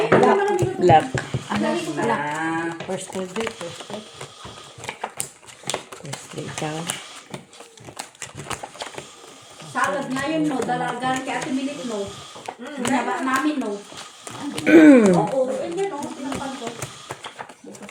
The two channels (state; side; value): identical; both; correlation 1.00